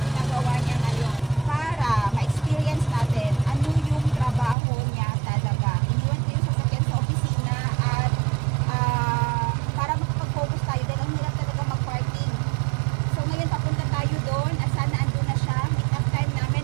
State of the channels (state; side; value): drops out; left; at 4.5 s